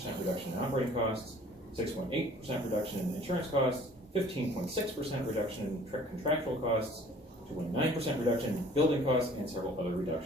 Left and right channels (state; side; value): normal; both; correlation 0.52